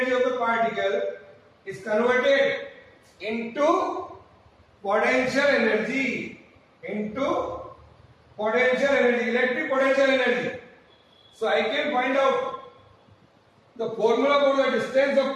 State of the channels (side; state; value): both; identical; correlation 1.00